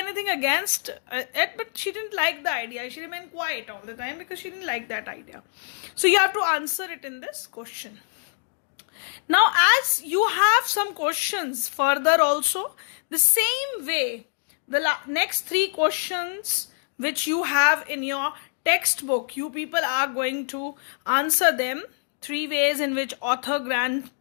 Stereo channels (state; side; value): silent; right; digital silence